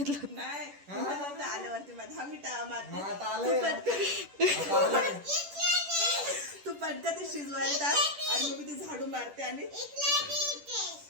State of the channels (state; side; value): late; left; 10 ms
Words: होतं? नाही मला आल्यावरती माझा मिठा मारते. मग आता आलंय. तू पटकन ते शिजवायला टाक आणि मग मी ते झाडू मारते. आणि